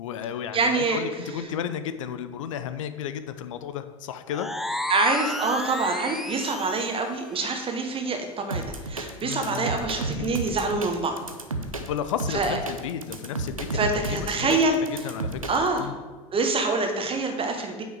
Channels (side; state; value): both; normal; correlation 0.11